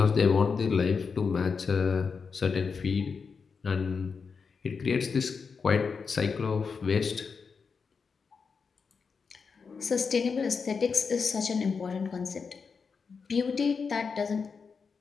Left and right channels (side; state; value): right; quieter; 5.4 dB